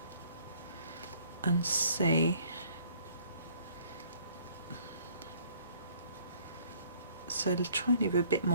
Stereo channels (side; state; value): both; inverted; correlation -0.59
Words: and see. So try and leave a bit